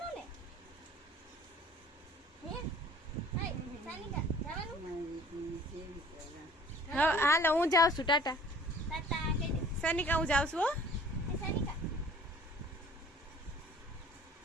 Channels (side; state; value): both; normal; correlation 0.51